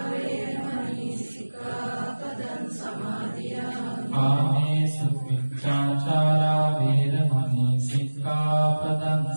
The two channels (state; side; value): inverted; both; correlation -1.00